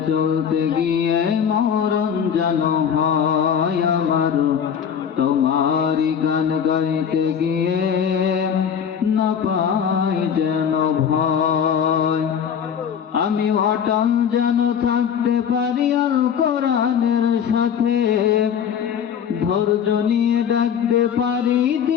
চলতে গিয়ে মরণ যেন হয় আমার, তোমারই গান গাইতে গিয়ে না পাই যেন ভয়। আমি অটল যেন থাকতে পারি আল কোরআনের সাথে, ধৈর্য নিয়ে ডাকতে পারি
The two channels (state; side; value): quieter; right; 7.9 dB